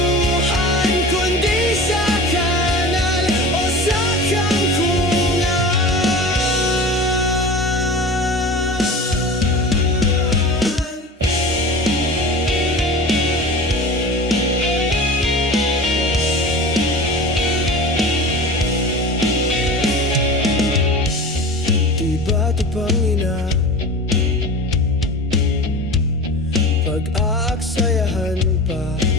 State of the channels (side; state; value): both; normal; correlation 0.34